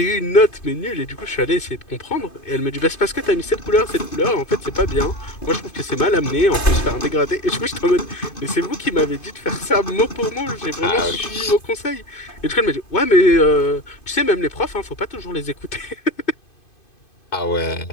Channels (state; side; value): late; right; 2.5 ms